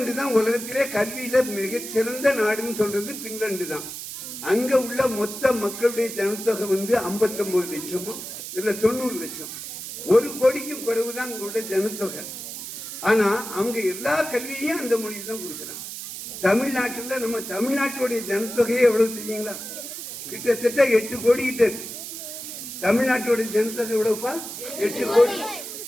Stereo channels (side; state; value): right; noise; hiss, 9 dB below the sound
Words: தான் உலகத்திலே கல்வியில மிகச்சிறந்த நாடுன்னு சொல்றது பின்லாந்து தான். அங்க உள்ள மொத்த மக்களுடைய ஜனத்தொகை 59 லட்சமோ இல்ல 90 லட்சம். 1 கோடிக்கும் குறைவுதான் உங்களுடைய ஜனத்தொகை. ஆனா அவங்க எல்லா கல்வியையும் அந்த மொழி தான் கொடுக்குறாங்க. தமிழ்நாட்டில் நம்ம தமிழ்நாட்டுடைய ஜனத்தொகையே எவ்வளவு தெரியுங்களா? கிட்டத்தட்ட 8 கோடி கிட்ட இருக்கு. தமிழ்நாட்டுடைய ஜனத்தொகை எவ்வளவுப்பா? 8 கோடி.